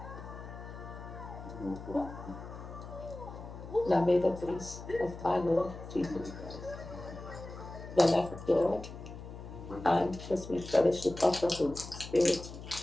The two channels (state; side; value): noise; left; hum, 12 dB below the sound